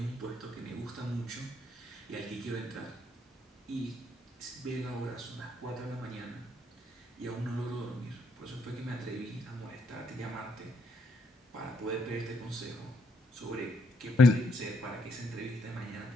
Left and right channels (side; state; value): both; normal; correlation 0.73